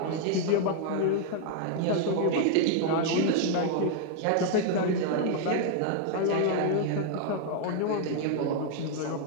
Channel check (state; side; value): different; both; correlation -0.01